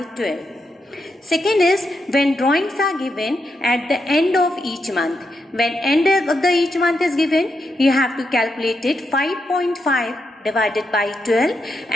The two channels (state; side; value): normal; both; correlation 0.83